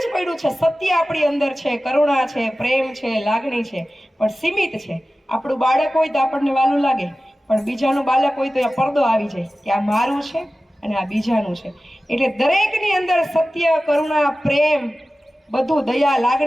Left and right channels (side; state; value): both; normal; correlation 0.96